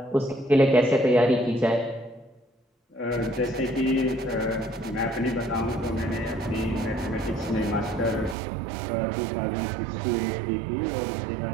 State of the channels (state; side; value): drops out; left; at 8.3 s